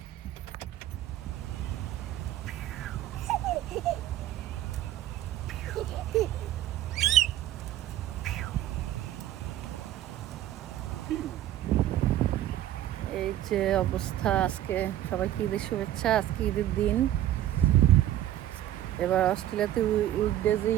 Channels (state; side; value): quieter; left; 13.0 dB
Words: এই যে অবস্থা। আজকে সবাইকে ঈদের শুভেচ্ছা। আজকে ঈদের দিন। এবার অস্ট্রেলিয়াতে উইকডেজে